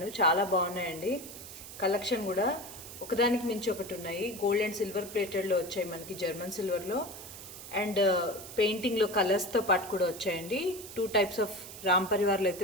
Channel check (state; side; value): noise; right; hiss, 13 dB below the sound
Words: చాలా బాగున్నాయండి. కలెక్షన్ కూడా ఒకదానికి మించి ఒకటి ఉన్నాయి. గోల్డ్ అండ్ సిల్వర్ ప్లేటెడ్లో వచ్చాయి మనకి, జర్మన్ సిల్వర్లో అండ్ పెయింటింగ్లో కలర్స్తో పాటు కూడా వచ్చాయండి. 2 టైప్స్ ఆఫ్ రామ్ పరివార్లు